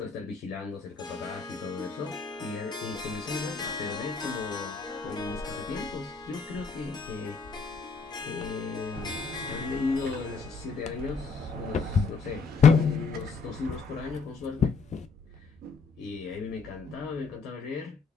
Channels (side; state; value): right; quieter; 4.8 dB